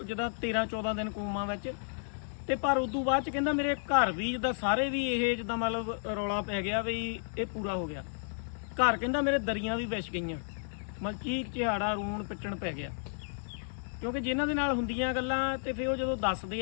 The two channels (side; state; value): right; silent; 56 dB below the other